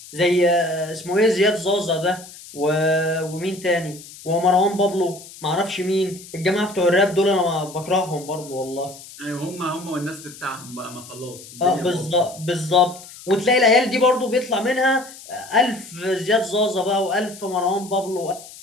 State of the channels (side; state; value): left; noise; hiss, 17 dB below the sound